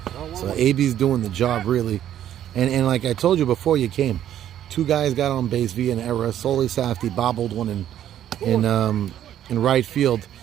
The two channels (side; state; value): left; quieter; 11.1 dB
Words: So AB's doing the job really. And like I told you before you came, 2 guys got on base via an error. Soli Safdie bobbled one in right field